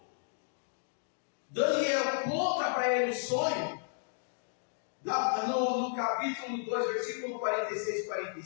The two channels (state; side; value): silent; right; digital silence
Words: Daniel conta para ele o sonho, no capítulo 2, versículo 46 e